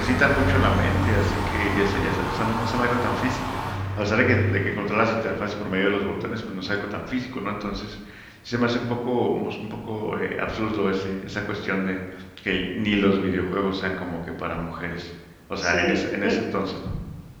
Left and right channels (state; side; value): identical; both; correlation 1.00